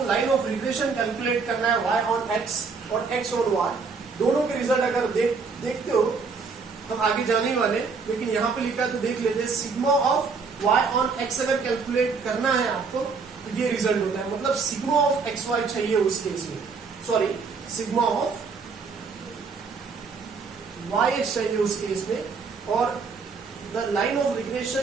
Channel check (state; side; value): quieter; left; 4.9 dB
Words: लाइन ऑफ रिग्रेशन कैलकुलेट करना है y ऑन x और x ऑन y, दोनों के रिजल्ट अगर देखते हो, हम आगे जाने वाले, लेकिन यहाँ पे लिखा तो देख लेते हैं। Sigma of y on x अगर कैलकुलेट करना है आपको तो ये रिजल्ट होता है, मतलब सिग्मा ऑफ एक्स वाई चाहिए उस केस में, sorry sigma of y x चाहिए उस केस में। और the line of regression